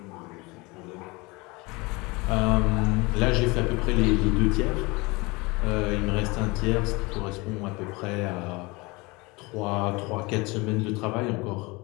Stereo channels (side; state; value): right; quieter; 24.9 dB